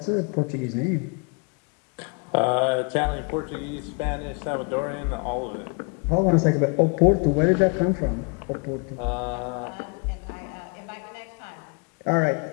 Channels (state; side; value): quieter; right; 33.9 dB